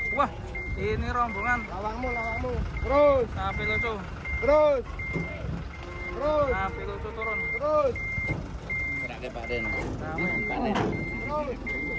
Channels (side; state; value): both; identical; correlation 1.00